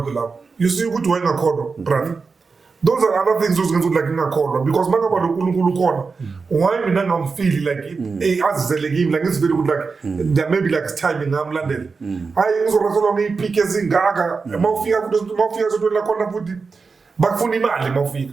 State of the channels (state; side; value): quieter; left; 4.7 dB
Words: lapha you see ukuthi wayengakholwa brother. Those are other things those like ngakholwa because makaba lo uNkulunkulu khona why mina ngamfeel like azizele kimi like it's very good like there maybe like timing ngamlandela hayi ngizorasela ngiyipike ezingaka mawufika so la khona futhi bakufuna imali mawufika